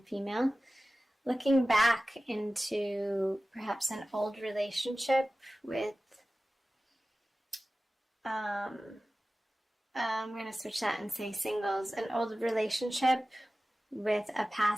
female. Looking back into perhaps an old relationship with, I'm going to switch that and say singles, an old relationship with a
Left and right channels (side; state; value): both; normal; correlation 0.96